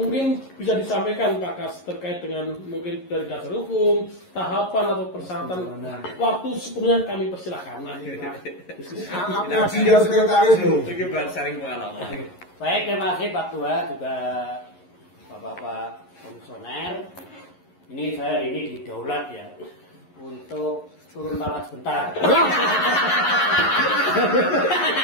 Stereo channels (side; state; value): right; late; 11 ms